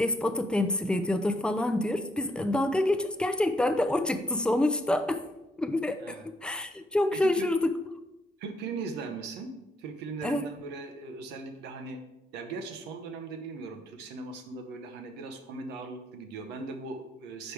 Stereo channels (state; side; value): normal; both; correlation 0.74